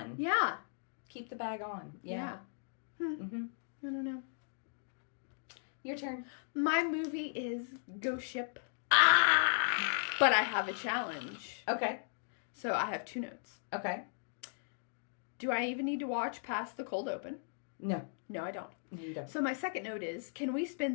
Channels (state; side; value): silent; right; digital silence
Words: Yeah. Keep the bag on. Yeah. Mm-hmm. I don't know. Your turn. My movie is Ghost Ship. Ah! But I have a challenge. Okay. So I have 2 notes. Okay. Do I even need to watch past the cold open? No. No, I don't. You don't. So my second note is, can we